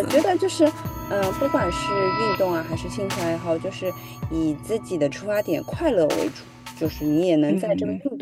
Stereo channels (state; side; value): identical; both; correlation 1.00